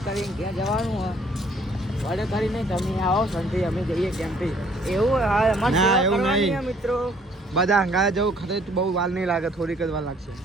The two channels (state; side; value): normal; both; correlation 0.61